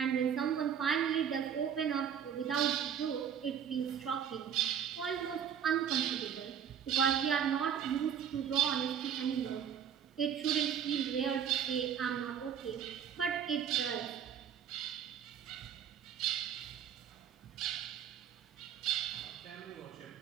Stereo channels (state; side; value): quieter; left; 8.5 dB